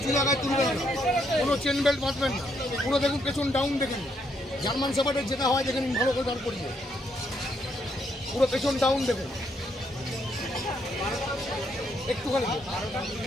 জায়গায় তুলবেন না, কোনো চেন বেল্ট বাঁধবেন না, পুরো দেখুন পেছন ডাউন দেখেন। জার্মান শেফার্ডের যেটা হয় দেখেন ভালো করে দাঁড় করিয়ে, পুরো পেছন ডাউন দেখুন। একটুখানি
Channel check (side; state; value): both; normal; correlation 0.74